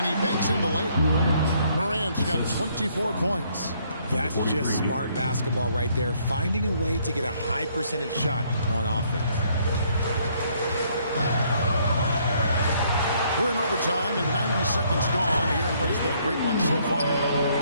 he banks in the layup. Morant's got 24 points. That's just smart basketball right there, finding a way to get a high percentage shot on offense. We're in overtime and 90 seconds gone here in what has been a great one so far.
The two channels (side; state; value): both; inverted; correlation -0.67